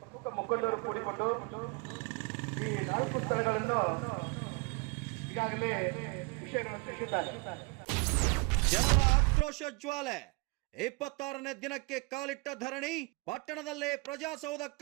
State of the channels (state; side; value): quieter; left; 28.9 dB